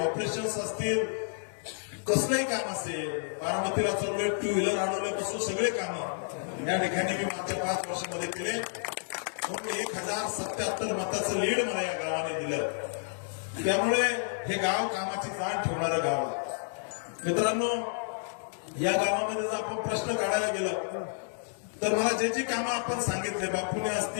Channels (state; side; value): silent; right; digital silence